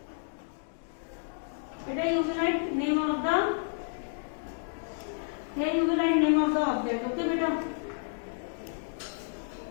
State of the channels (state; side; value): silent; right; digital silence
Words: Beta, you will write name of the. Here you will write name of the object. Okay, beta.